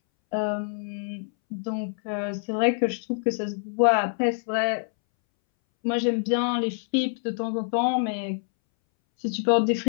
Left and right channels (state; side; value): silent; right; 61 dB below the other